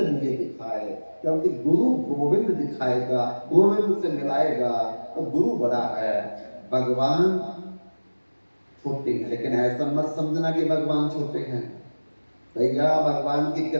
मुझे दिखाए। क्योंकि गुरु गोविंद दिखाएगा, गोविंद से मिलाएगा, तो गुरु बड़ा है, भगवान छोटे हैं। लेकिन ऐसा मत समझना कि भगवान छोटे हैं। भैया भगवान की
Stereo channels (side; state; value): both; inverted; correlation -1.00